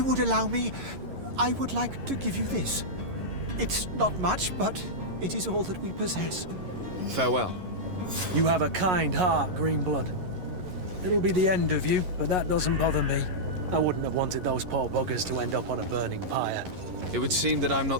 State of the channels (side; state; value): left; late; 11 ms